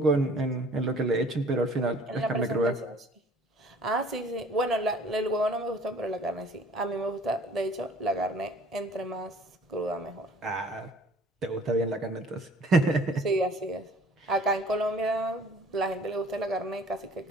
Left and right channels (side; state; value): both; normal; correlation 0.53